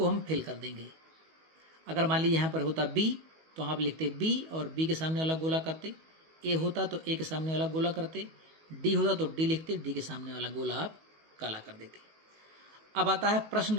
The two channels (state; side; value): late; left; 19 ms